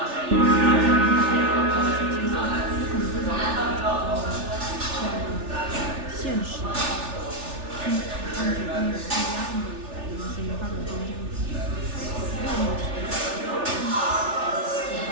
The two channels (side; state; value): left; late; 3.4 ms